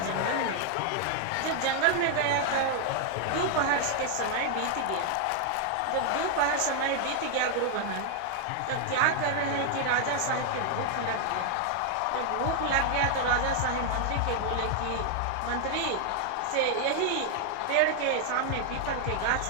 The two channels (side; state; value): both; different; correlation 0.00